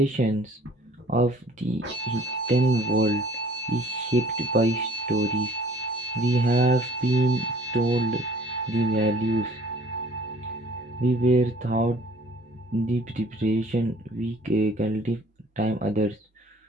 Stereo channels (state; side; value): normal; both; correlation 0.53